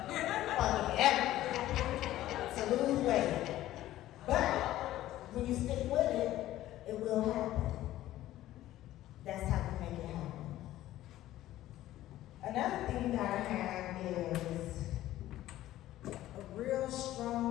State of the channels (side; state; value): right; quieter; 14.5 dB